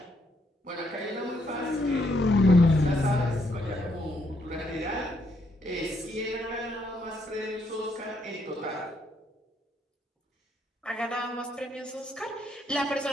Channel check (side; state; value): both; normal; correlation 0.74